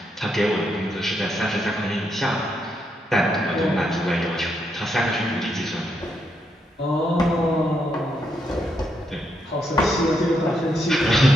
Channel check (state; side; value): normal; both; correlation 0.79